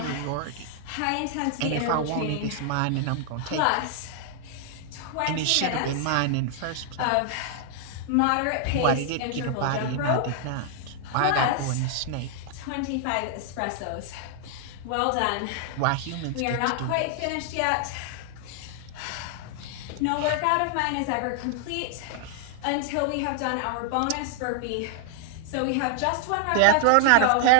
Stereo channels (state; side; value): different; both; correlation -0.01